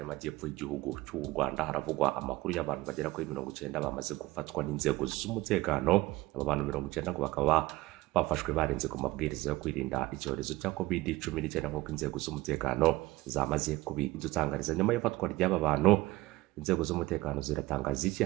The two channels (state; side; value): quieter; left; 19.3 dB